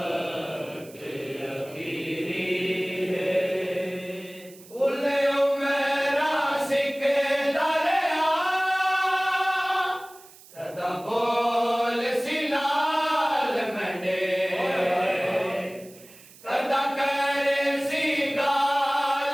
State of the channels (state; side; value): noise; right; hiss, 22 dB below the sound